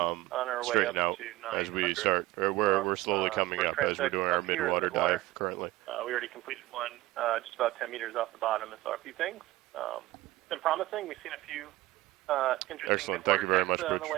straighten out as we start, or we're slowly coming up as we're doing our midwater dive currently. We already completed one just about 10 meters off the bottom and saw a few things. It's been promising. We've seen a few interesting Excellent. Thank you very much, on the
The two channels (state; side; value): quieter; left; 18.0 dB